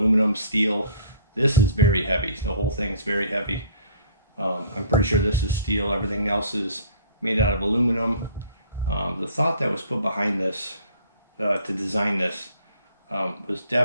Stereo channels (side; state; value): both; inverted; correlation -0.54